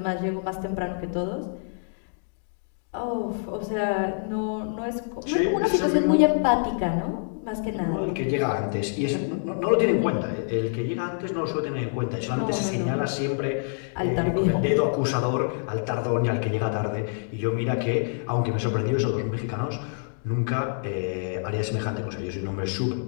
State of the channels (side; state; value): right; silent; digital silence